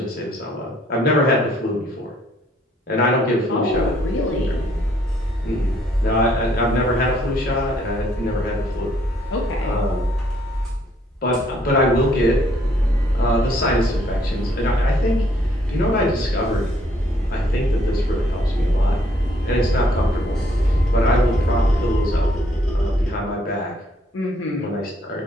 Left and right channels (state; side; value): normal; both; correlation 0.66